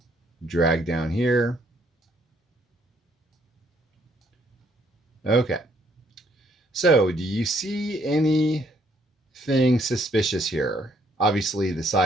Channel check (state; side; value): normal; both; correlation 0.68